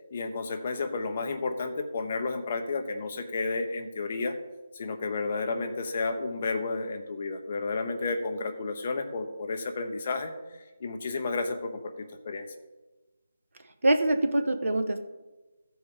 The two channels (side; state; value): both; inverted; correlation -0.86